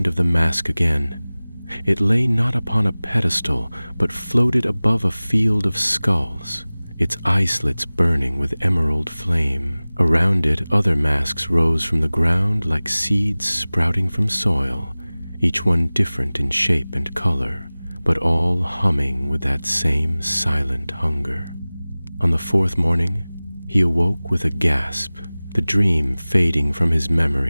of the mask again. It lay not upon a pedestal, but floated above a field of skulls, its eye slits burning with emerald flame. Around it other masks rose from the ground like seeds sprouting from soil, each one different in shape and color, but all humming with that same silent hunger. On the 4th morning, he awoke with a gasp, the dream fading from his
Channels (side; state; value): both; inverted; correlation -0.99